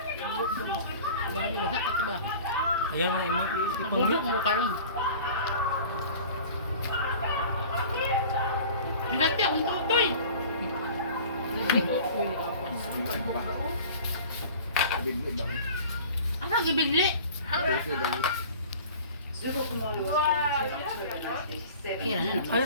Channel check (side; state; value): both; inverted; correlation -0.42